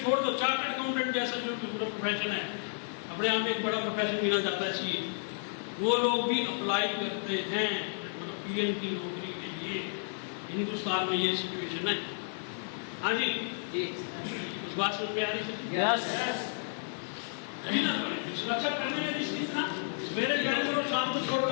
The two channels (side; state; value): right; silent; digital silence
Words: छोड़ दो, चार्टर्ड अकाउंटेंट जैसा जो प्रोफेशन है अपने आप में एक बड़ा प्रोफेशन गिना जाता है सीए, वो लोग भी अप्लाई करते हैं मतलब पीएम की नौकरी के लिए। हिंदुस्तान में ये सिचुएशन है। हाँ जी, बात समझ में आ रही है? यस। सुरक्षा करने में निश्चित ना, सवेरे ज्वाइन करो, शाम को छोड़